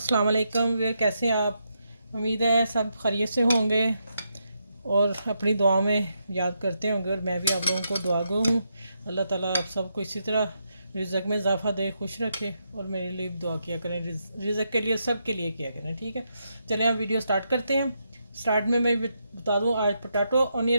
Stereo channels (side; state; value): both; inverted; correlation -0.82